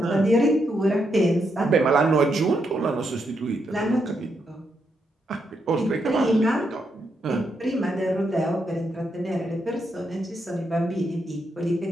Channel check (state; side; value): normal; both; correlation 0.80